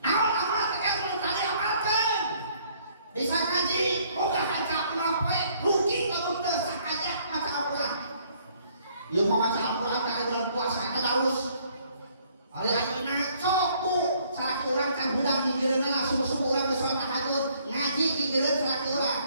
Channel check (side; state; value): both; inverted; correlation -0.63